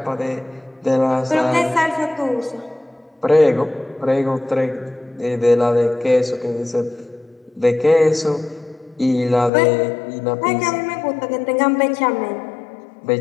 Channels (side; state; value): right; drops out; at 9.5 s